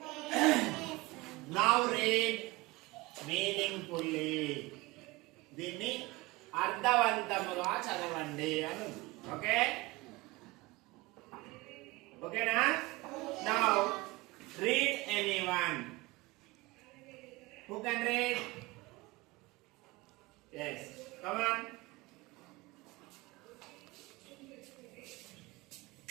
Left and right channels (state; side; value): quieter; left; 22.0 dB